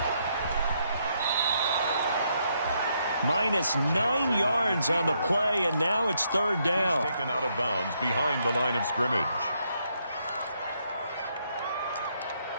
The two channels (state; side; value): inverted; both; correlation -0.75